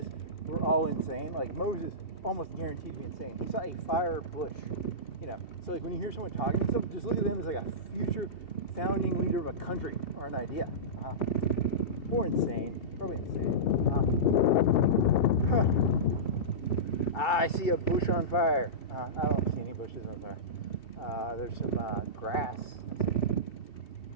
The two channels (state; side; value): late; right; 2.7 ms